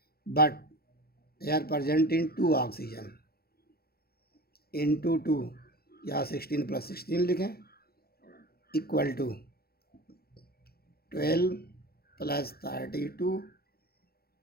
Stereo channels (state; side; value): late; right; 0.45 ms